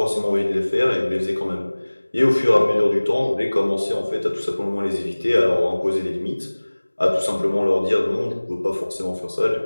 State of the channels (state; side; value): inverted; both; correlation -1.00